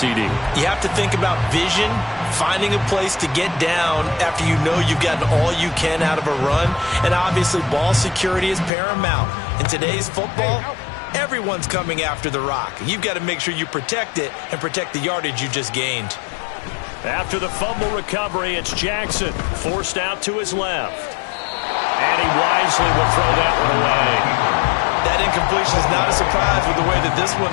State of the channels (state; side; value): drops out; right; at 8.7 s